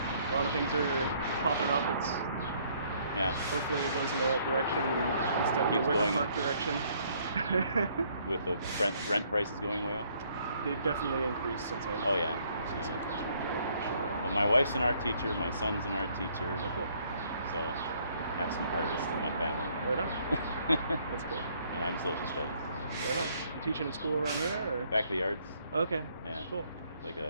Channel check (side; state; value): both; inverted; correlation -0.65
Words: A lot of things are popping up. Hopefully it goes in the right direction instead of the Wicker Park direction. With the rent prices going way up? They've definitely increased since I... Oh yeah. Well, my wife's an art teacher, my son's an art teacher. Oh, cool. So I have some artists in my family. Right on. That's cool. And I'm social studies. Right on. You teaching in school around here? Or? Back of the Arts. Okay. Yeah. Cool. Like